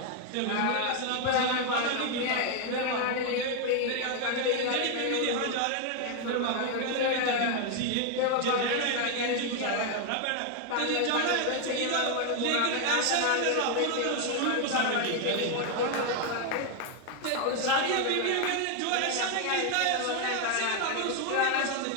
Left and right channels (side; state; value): both; different; correlation 0.01